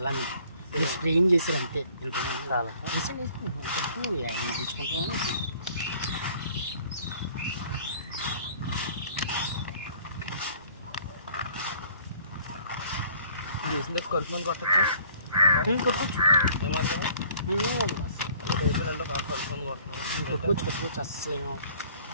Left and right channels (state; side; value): inverted; both; correlation -0.55